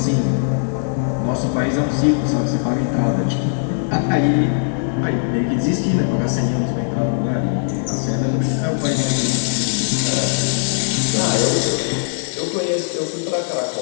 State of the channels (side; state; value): right; silent; digital silence